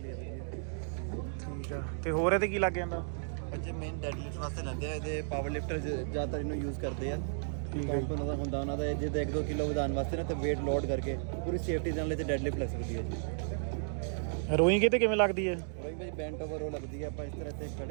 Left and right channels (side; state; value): left; silent; digital silence